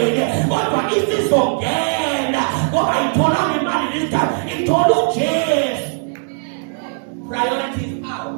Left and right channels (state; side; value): silent; left; digital silence